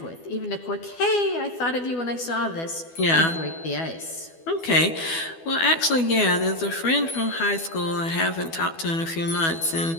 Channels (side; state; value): right; late; 12 ms